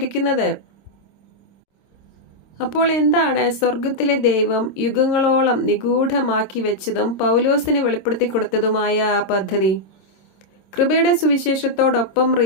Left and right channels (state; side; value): late; right; 26 ms